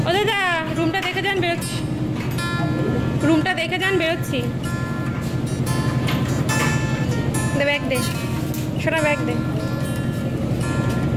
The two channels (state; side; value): identical; both; correlation 1.00